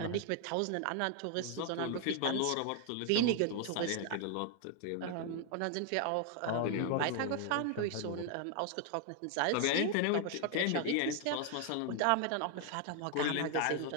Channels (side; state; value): both; different; correlation 0.00